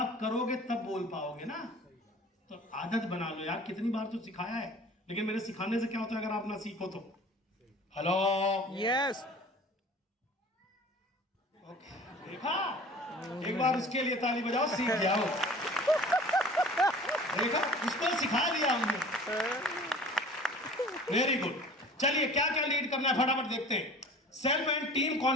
करोगे तब बोल पाओगे ना। तो आदत बना लो यार, कितनी बार तो सिखाया है, लेकिन मेरे सिखाने से क्या होता है अगर आप ना सीखो तो। Hello yes. देखा, एक बार उसके लिए ताली बजाओ, सीख जाओ। देखा, उसको सिखा दिया हमने। Very good. चलिए क्या क्या लीड करना है फटाफट देखते हैं। Self and team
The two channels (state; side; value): normal; both; correlation 0.45